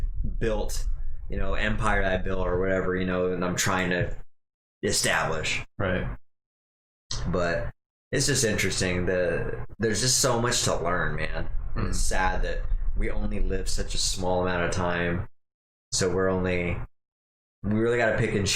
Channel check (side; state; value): both; identical; correlation 1.00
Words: built, empire that I built or whatever. And I'm trying to establish. Right. But it's just interesting that there's just so much to learn, man. And it's sad that we only live such a small amount of time. So we really got to pick and